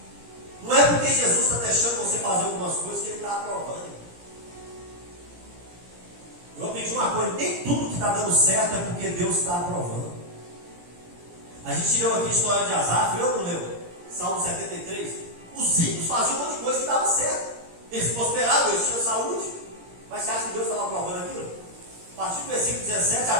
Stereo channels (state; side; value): late; left; 17 ms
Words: certo é porque Deus está aprovando. A gente leu aqui a história de Asaf, eu não leu? Salmo 73. Os ímpios faziam um monte de coisa que dava certo. Eles prosperavam, eles tinham saúde. Mas você acha que Deus estava aprovando aquilo? A partir do versículo 17, a